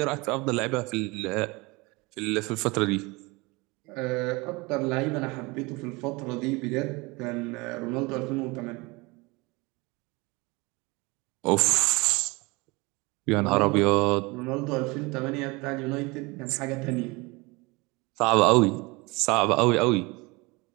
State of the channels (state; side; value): quieter; left; 25.2 dB